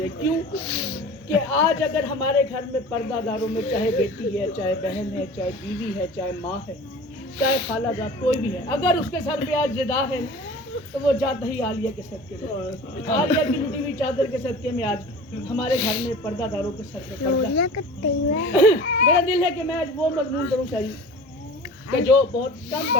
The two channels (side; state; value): both; normal; correlation 0.39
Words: کیوں کہ آج اگر ہمارے گھر میں پردہ داروں میں چاہے بیٹی ہے چاہے بہن ہے چاہے بیوی ہے چاہے ماں ہے چاہے خالہ جات کوئی بھی ہے اگر اس کے سر پہ آج ردا ہے تو وہ جاتا ہی عالیہ کے صدقے میں عالیہ کی لٹی ہوئی چادر کے صدقے میں آج ہمارے گھر میں پردہ داروں کے سر پہ میرا دل ہے کہ میں آج وہ مضمون کروں چاہیے کہ جو بہت کم